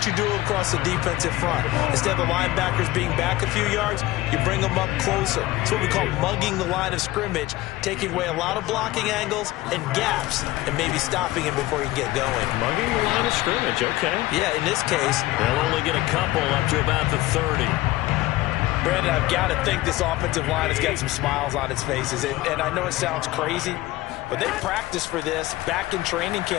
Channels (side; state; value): right; quieter; 17.8 dB